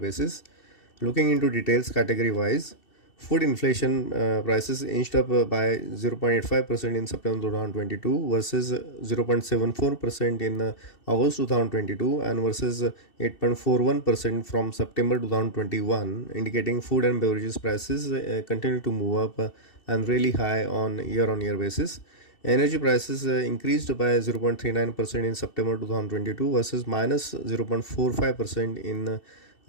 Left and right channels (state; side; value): late; right; 2.7 ms